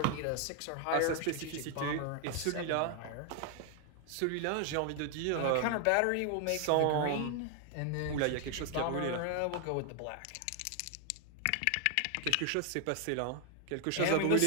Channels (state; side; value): different; both; correlation 0.00